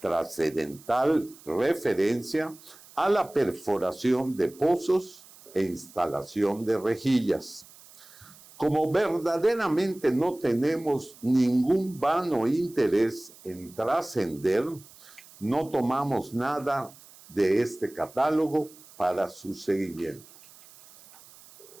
Trascendental referencia a la perforación de pozos e instalación de rejillas. Como verdaderamente no tenemos ningún vano interés en trascender, no tomamos nada de este catálogo para su seguimiento.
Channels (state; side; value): noise; right; hiss, 22 dB below the sound